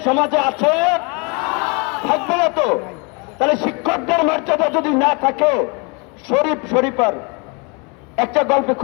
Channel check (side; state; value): right; quieter; 32.2 dB